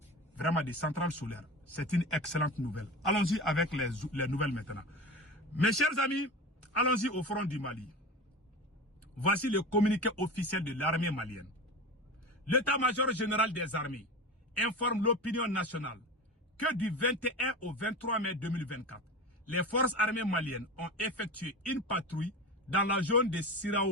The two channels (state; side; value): normal; both; correlation 0.28